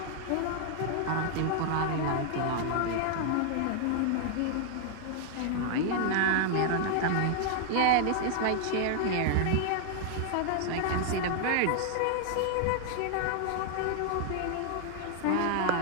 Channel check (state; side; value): different; both; correlation 0.00